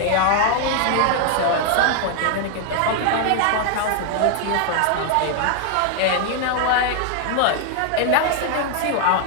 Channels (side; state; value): both; different; correlation 0.00